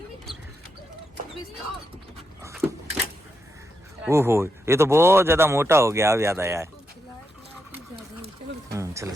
ओहो, ये तो बहुत ज़्यादा मोटा हो गया, अब याद आया है। चलो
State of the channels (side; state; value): both; normal; correlation 0.83